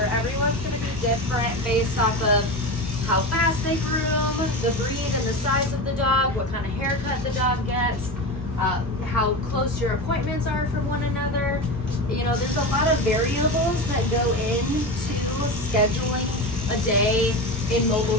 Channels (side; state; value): both; normal; correlation 0.23